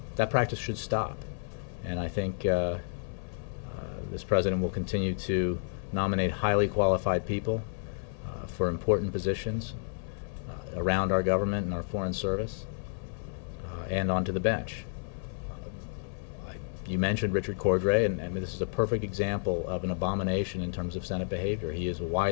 practice should stop. And I think this president will continue to nominate highly qualified people for important positions around our government and our foreign service and onto the bench. You mentioned Richard Cordray, and this is a perfect example of an abomination in terms of Senate behavior. He is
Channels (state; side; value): silent; right; 57 dB below the other